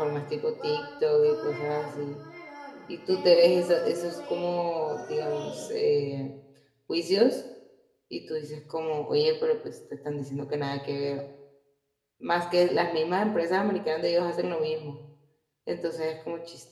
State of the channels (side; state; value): both; identical; correlation 1.00